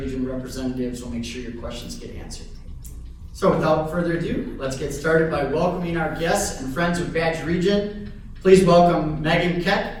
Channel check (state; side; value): identical; both; correlation 1.00